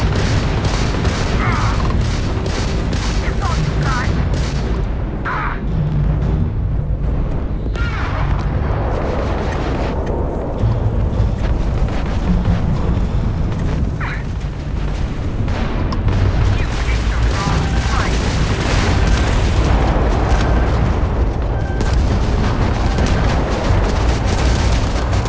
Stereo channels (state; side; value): identical; both; correlation 1.00